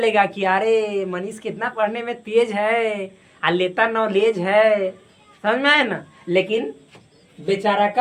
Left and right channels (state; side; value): identical; both; correlation 1.00